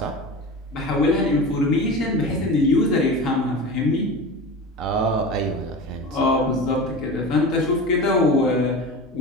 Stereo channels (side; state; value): both; normal; correlation 0.30